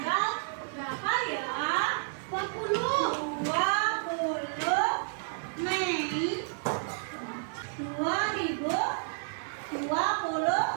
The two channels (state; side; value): silent; left; 57 dB below the other